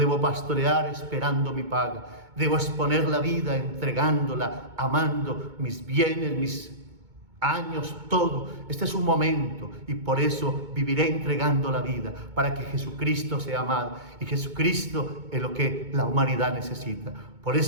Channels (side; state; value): left; late; 2.2 ms